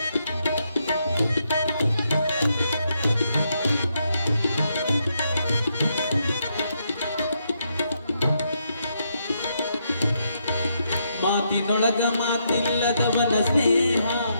ಮಾತಿನೊಳಗ ಮಾತಿಲ್ಲದವನ ಸ್ನೇಹ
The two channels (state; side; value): inverted; both; correlation -0.78